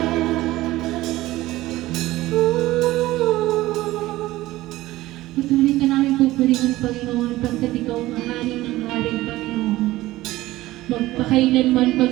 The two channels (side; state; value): left; quieter; 17.2 dB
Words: Patuloy ka namin pupurihin, Panginoon, pagkat ikaw ang hari ng hari, Panginoon. Magpakailanman,